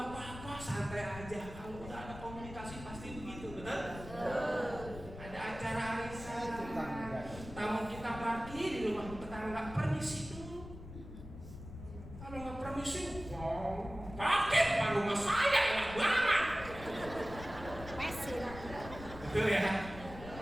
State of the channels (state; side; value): noise; left; rumble, 13 dB below the sound